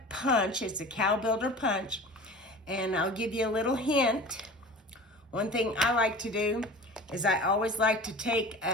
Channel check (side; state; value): both; normal; correlation 0.38